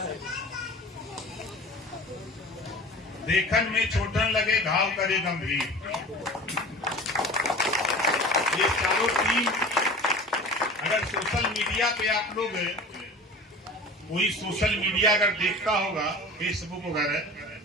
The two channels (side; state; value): both; normal; correlation 0.38